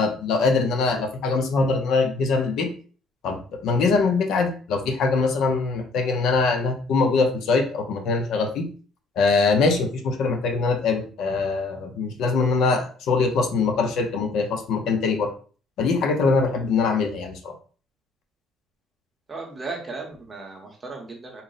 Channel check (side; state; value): right; quieter; 3.7 dB